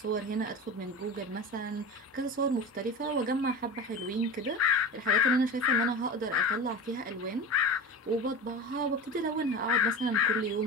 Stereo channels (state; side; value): normal; both; correlation 0.30